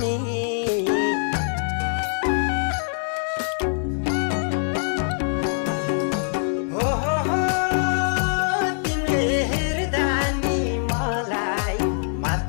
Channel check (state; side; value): silent; right; digital silence